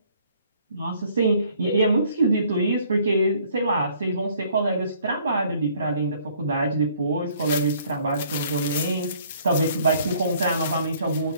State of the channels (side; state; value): both; inverted; correlation -0.60